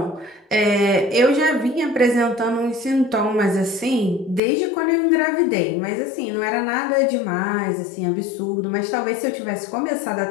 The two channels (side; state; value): right; drops out; at 4.4 s